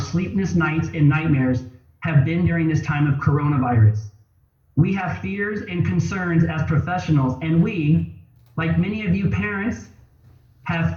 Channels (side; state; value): both; identical; correlation 1.00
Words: nights and nightmares have been during this time of coronavirus. We have fears and concerns as professionals, and we, like many of you parents, have